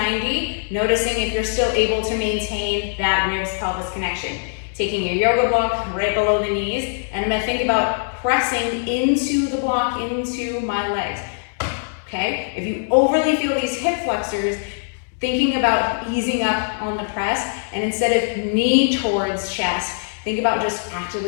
noticing if you're still able to maintain that ribs-pelvis connection. Taking your yoga block right below the knees, and I'm gonna think about pressing into the block, into my legs. Okay, if you overly feel these hip flexors, thinking about easing up on the press, and instead of knee towards chest, think about just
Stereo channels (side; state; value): right; silent; digital silence